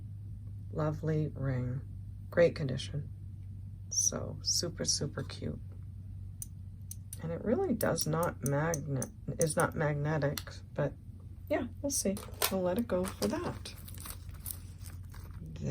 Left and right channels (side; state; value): both; identical; correlation 1.00